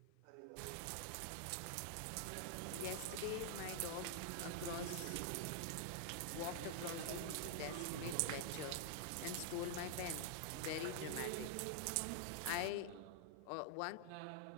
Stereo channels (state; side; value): different; both; correlation -0.01